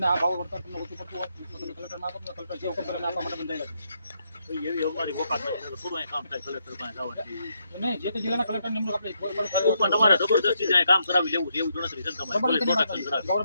આ ભાવ વળતર તમને ઓછું પડતું હોય તો તમે કલેક્ટરમાં આપો, કલેક્ટર જે હુકમ કરે આપવા માટે બંધાયેલા છે. એવી અમારી વોકાત નથી, થોડું અહીં કામ થાય કલેક્ટર પાસે જવાનું. નહીં, જે તે જિલ્લાના કલેક્ટર નિમણૂક આપણે પણ તમારે જબરદસ્તી જાય કામ કરાવી લેવું છે એવું ગણતરી છે ને તમારે પ્રોટેક્શન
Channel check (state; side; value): inverted; both; correlation -0.78